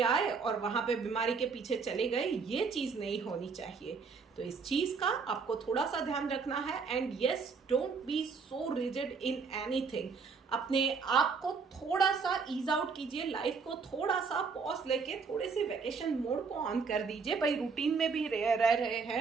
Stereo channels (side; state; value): left; quieter; 5.1 dB